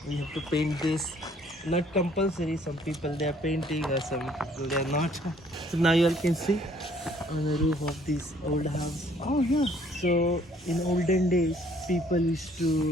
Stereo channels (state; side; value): normal; both; correlation 0.61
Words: we have to paint this. Not compulsory, some people they are painting or some people they are not. So now you all can see on the roof of this old house. Oh yeah. So in olden days, people used